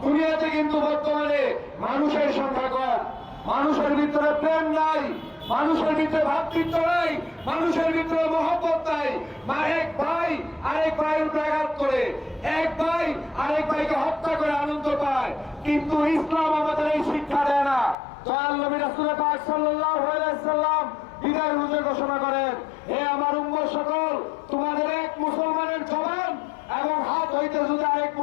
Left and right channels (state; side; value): drops out; right; at 17.9 s